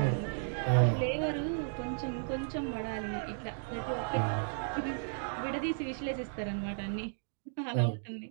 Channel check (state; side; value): silent; left; digital silence